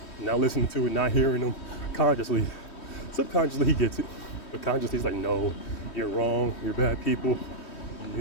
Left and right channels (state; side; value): late; right; 3.1 ms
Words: not listening to it, not hearing them consciously. Subconsciously he gets it. But consciously he's like, no, you're wrong, you're bad people.